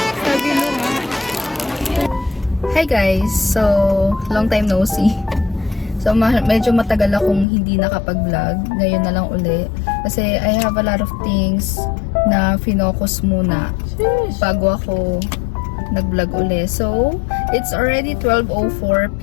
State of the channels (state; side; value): drops out; right; at 7.5 s